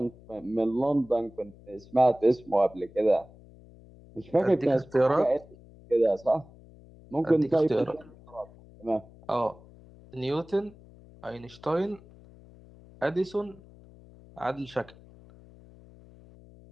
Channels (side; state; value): left; noise; hum, 23 dB below the sound